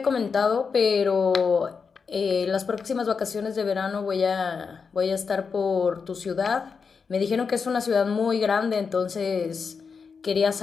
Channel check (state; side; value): quieter; right; 5.5 dB